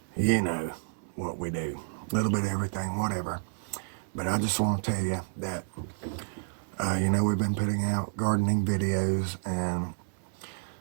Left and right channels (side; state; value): left; silent; 58 dB below the other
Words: you know what we do. A little bit of everything, whatever. But I just want to tell you that, we've been putting out gardening videos, and